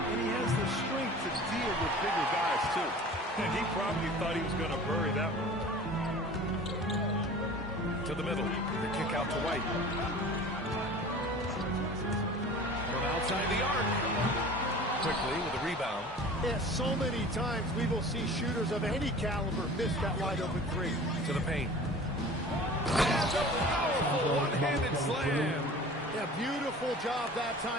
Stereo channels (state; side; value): normal; both; correlation 0.41